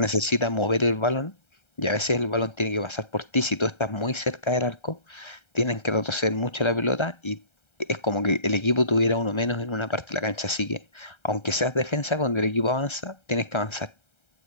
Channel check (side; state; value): right; late; 1.3 ms